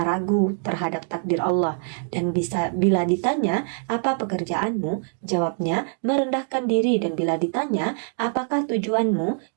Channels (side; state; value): left; silent; 61 dB below the other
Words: ragu terhadap takdir Allah. Dan bila ditanya, apa pekerjaanmu? Jawabnya, merendahkan diri. Dan bila ditanya, apakah tujuanmu?